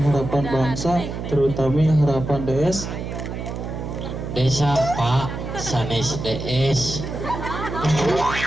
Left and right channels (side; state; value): right; noise; hum, 6 dB below the sound